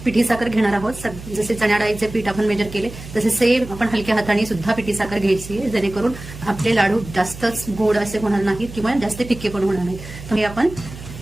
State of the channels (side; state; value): right; noise; hum, 14 dB below the sound